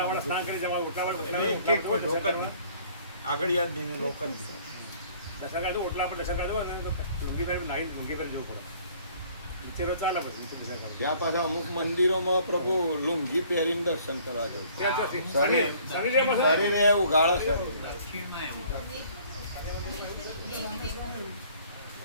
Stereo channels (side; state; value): both; inverted; correlation -0.56